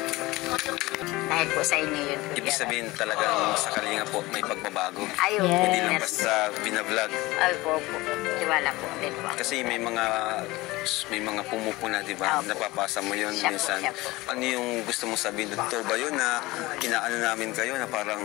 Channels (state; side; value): quieter; right; 20.3 dB